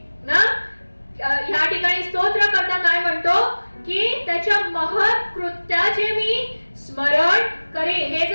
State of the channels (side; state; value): both; inverted; correlation -1.00